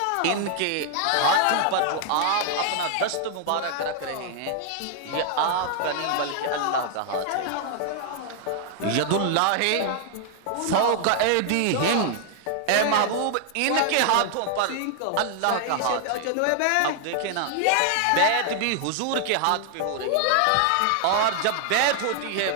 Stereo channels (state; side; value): different; both; correlation 0.00